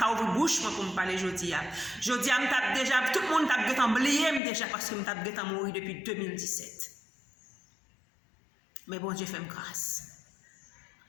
ouvrir bouche pour me parler, je dis. Je dis, déjà, tout le monde t'a oublié déjà parce que je suis mort depuis 2017. Mais bon Dieu fait grâce.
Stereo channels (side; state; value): right; drops out; at 4.4 s